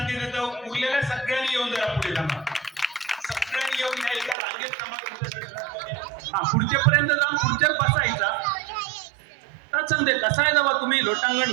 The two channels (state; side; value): drops out; left; at 4.4 s